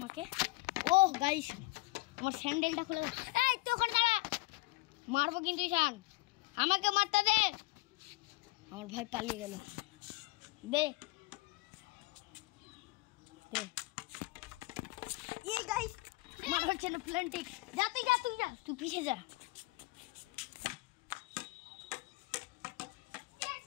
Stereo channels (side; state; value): right; quieter; 22.4 dB